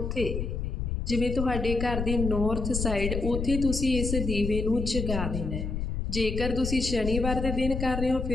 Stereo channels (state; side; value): noise; left; rumble, 3 dB below the sound